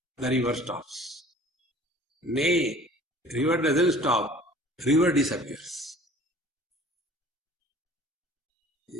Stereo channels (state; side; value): normal; both; correlation 0.48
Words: the river stops. Nay, river doesn't stop, river disappears.